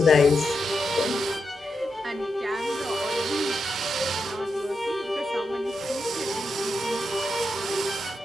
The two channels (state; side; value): normal; both; correlation 0.86